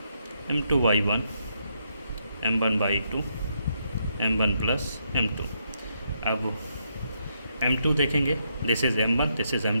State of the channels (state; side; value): inverted; both; correlation -0.77